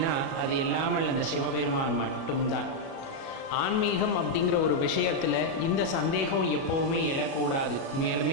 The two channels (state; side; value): late; right; 37 ms